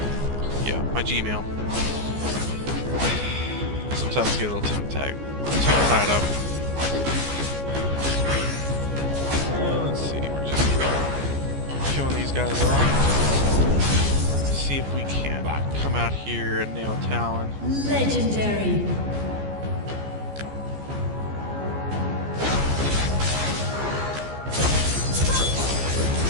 my Gmail. Sometimes I get a little tied up. Let's see, we're just killing these guys off. See if we can come out here and nail Talon. Legendary.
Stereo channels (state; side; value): late; left; 14 ms